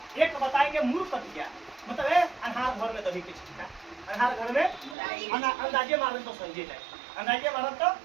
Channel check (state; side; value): drops out; left; at 5.0 s